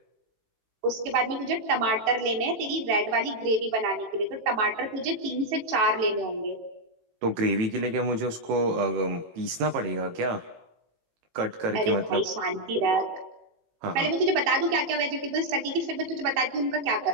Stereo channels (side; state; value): left; late; 18 ms